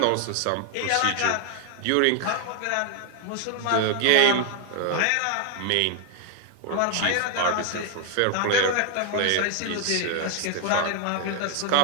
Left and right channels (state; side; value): different; both; correlation 0.00